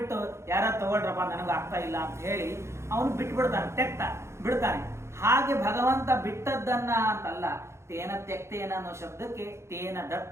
ಯಾರು ತಗೊಳ್ರಪ್ಪ ನನಗೆ ಆಗ್ತಾ ಇಲ್ಲ ಅಂತ ಹೇಳಿ ಅವನು ಬಿಟ್ಬಿಡ್ತಾನೆ, ಬಿಡ್ತಾನೆ. ಹಾಗೆ ಭಗವಂತ ಬಿಟ್ಟದ್ದನ್ನ ಅಂತಲ್ಲ, ತೇನ ತ್ಯಕ್ತೇನ ಅನ್ನೋ ಶಬ್ದಕ್ಕೆ ತೇನ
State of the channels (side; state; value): left; late; 0.13 ms